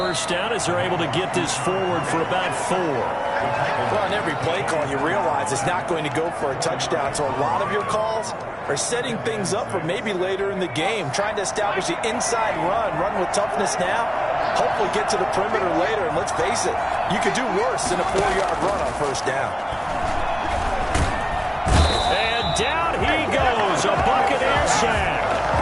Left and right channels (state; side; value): identical; both; correlation 1.00